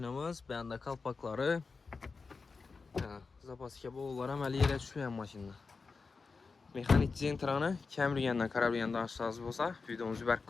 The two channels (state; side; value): quieter; right; 4.5 dB